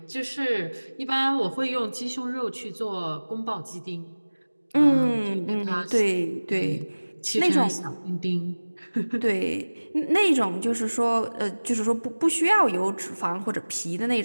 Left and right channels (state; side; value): inverted; both; correlation -1.00